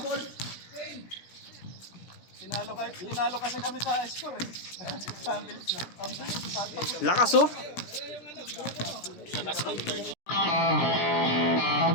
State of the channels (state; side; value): late; right; 17 ms